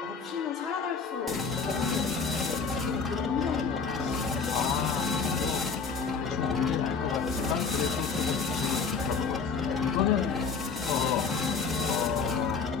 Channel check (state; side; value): quieter; right; 5.2 dB